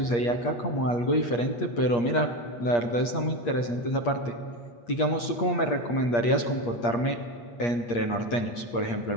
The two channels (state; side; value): late; right; 8.5 ms